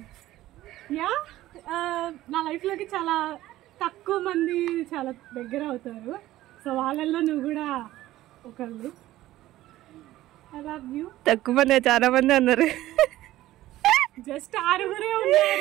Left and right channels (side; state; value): left; quieter; 15.4 dB